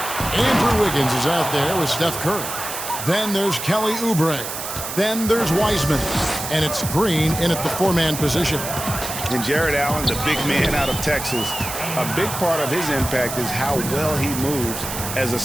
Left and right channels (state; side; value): noise; right; hiss, 7 dB below the sound